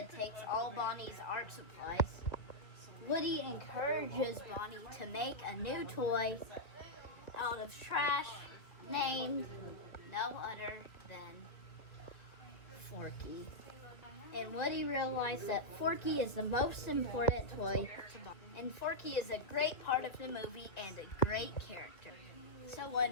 takes all Bonnie's art supplies, Woody encourages Bonnie to make a new toy out of trash named no other than Forky. And Woody realized that Forky is the most important toy to Bonnie. And Forky is a great part of the movie and a great character. So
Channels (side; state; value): right; late; 2.1 ms